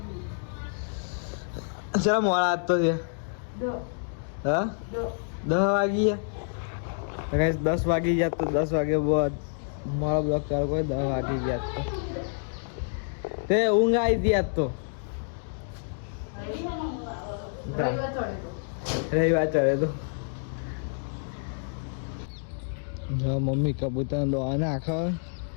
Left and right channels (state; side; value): silent; right; digital silence